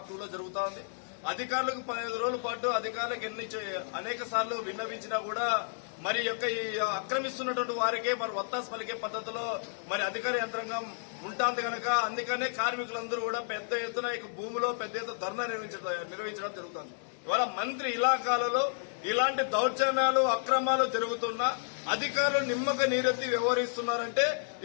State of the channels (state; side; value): silent; right; digital silence